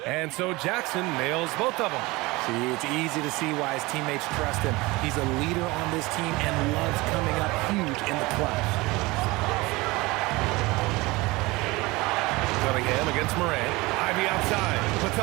And so Jackson nails both of them. See, it's easy to see why his teammates trust him. He's a leader on this team and loves coming up huge in the clutch. Cunningham against Morant. Ivy outside.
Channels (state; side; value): quieter; left; 22.3 dB